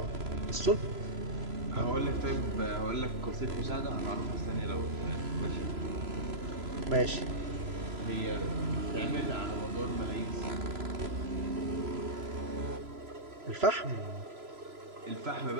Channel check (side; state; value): left; late; 3.0 ms